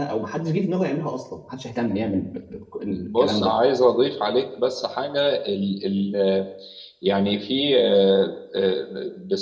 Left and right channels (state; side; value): identical; both; correlation 1.00